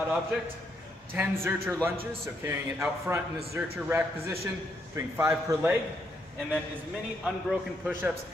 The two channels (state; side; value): normal; both; correlation 0.76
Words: object, 10 Zercher lunges, so carrying it out front in this Zercher rack position, doing 5 per leg, and then as many unbroken push-ups